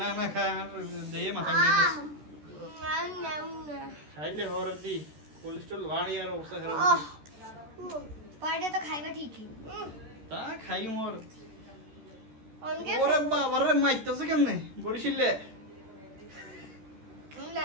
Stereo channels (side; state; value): left; late; 13 ms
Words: না খা দেই মাথা দিয়ে না খাইলে হরতি কোলেস্ট্রল বাড়ি আর অবস্থা খারাপ। পরে তো খাইবা ঠিকই। তা খাই মোর অনকে ওরে বাবা রে মাইতেছে কেমনে বরিশিলে।